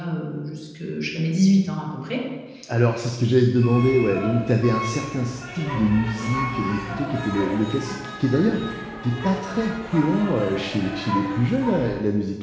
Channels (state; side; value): identical; both; correlation 1.00